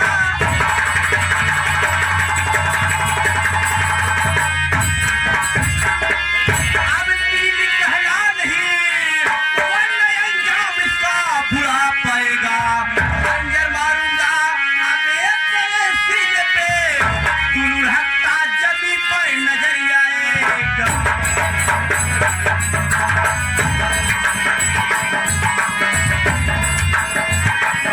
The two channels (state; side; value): identical; both; correlation 1.00